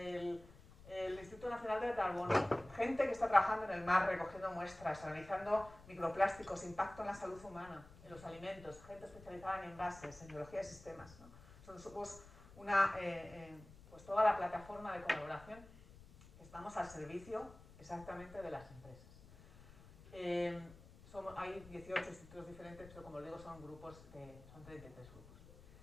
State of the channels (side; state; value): left; noise; rumble, 20 dB below the sound